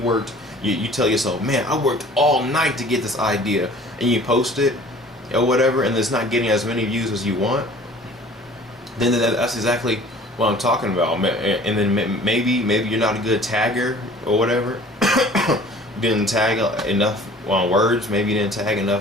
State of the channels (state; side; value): normal; both; correlation 0.48